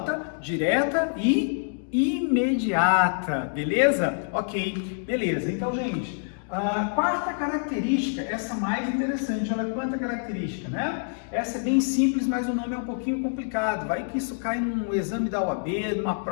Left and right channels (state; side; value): silent; right; digital silence